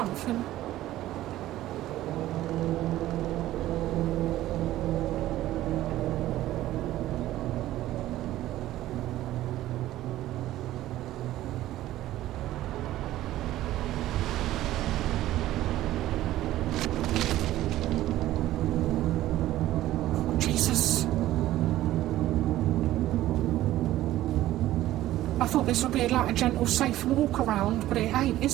I thought this would be like a gentle, safe walk around, but it ain't,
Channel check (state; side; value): quieter; left; 14.7 dB